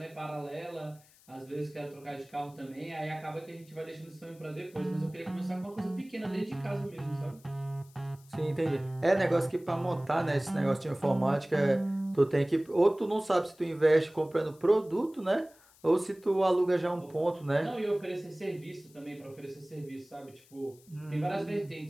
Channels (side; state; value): left; noise; hiss, 27 dB below the sound